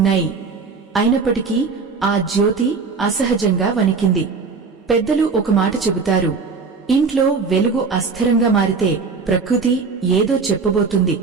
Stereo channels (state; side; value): quieter; left; 4.8 dB